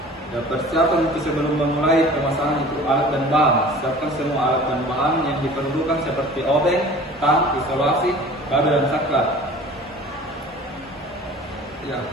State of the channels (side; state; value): both; normal; correlation 0.44